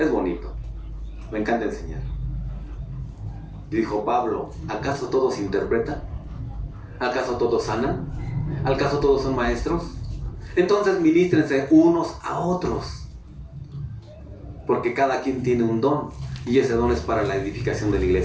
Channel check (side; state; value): both; identical; correlation 1.00